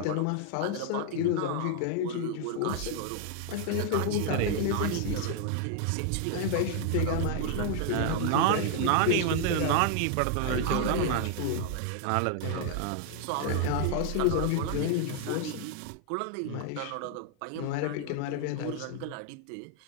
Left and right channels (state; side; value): different; both; correlation 0.00